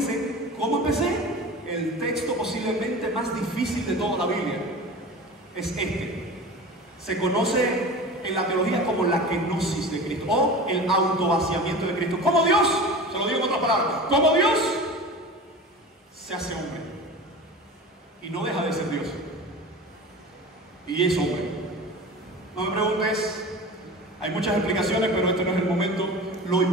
¿cómo empecé? El texto posiblemente más difícil de toda la Biblia es este. Se conoce en la teología como la kenosis de Cristo o el autovaciamiento de Cristo. Como Dios, se lo digo en otras palabras, como Dios se hace hombre y no deja de ser Dios y es hombre. No me preguntes, hay muchas explicaciones, pero este no es el momento. Lo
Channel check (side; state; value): both; normal; correlation 0.34